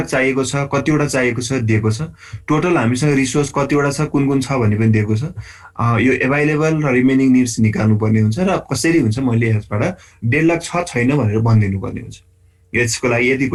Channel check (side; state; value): both; identical; correlation 1.00